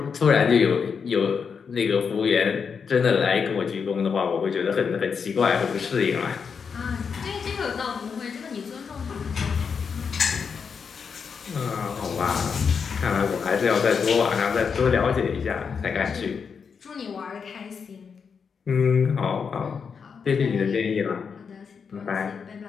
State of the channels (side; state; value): right; quieter; 6.1 dB